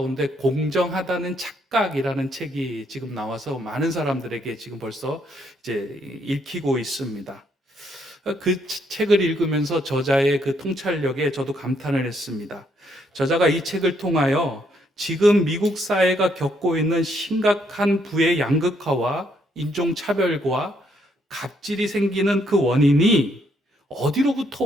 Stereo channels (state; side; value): normal; both; correlation 0.72